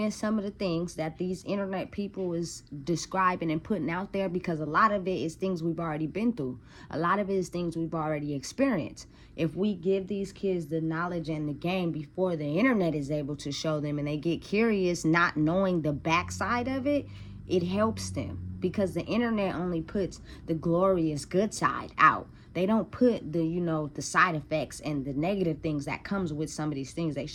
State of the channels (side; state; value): both; identical; correlation 1.00